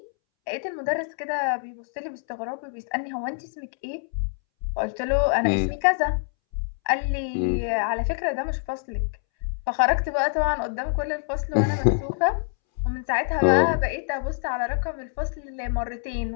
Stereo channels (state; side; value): silent; right; 61 dB below the other